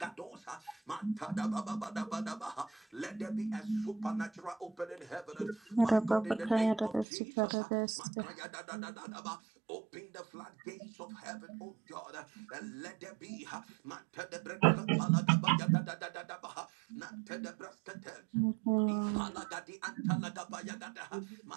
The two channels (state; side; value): drops out; left; at 7.1 s